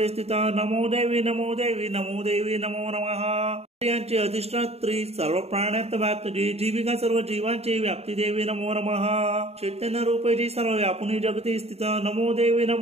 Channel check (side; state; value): left; late; 0.30 ms